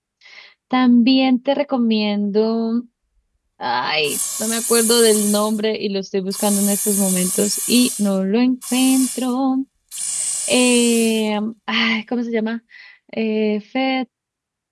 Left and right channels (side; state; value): both; identical; correlation 1.00